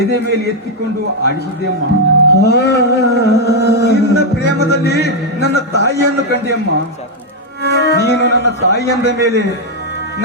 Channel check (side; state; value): both; normal; correlation 0.00